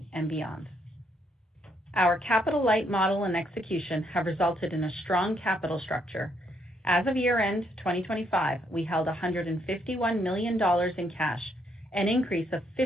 and beyond. Our capital-light model and execution have resulted in a strong capital structure. As of year-end 2025, we held $151 million in cash, an increase of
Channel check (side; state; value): both; normal; correlation 0.73